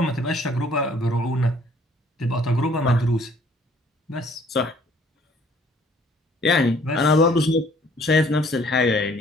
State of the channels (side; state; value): both; normal; correlation 0.59